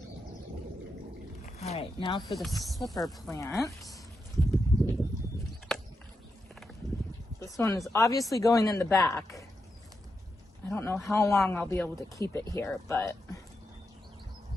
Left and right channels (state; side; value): normal; both; correlation 0.86